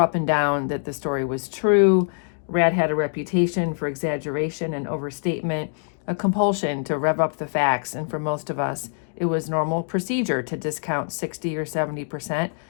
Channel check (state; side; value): silent; right; digital silence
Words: and down that the story was true. Rat had a reputation for exaggeration and overstatement, a compulsion to rev up the facts, and for most of us, it was normal procedure to discount 60 or 70%